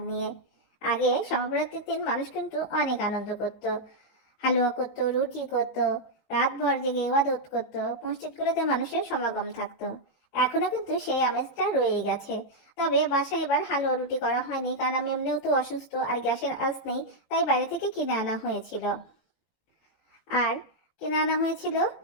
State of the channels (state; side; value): late; right; 18 ms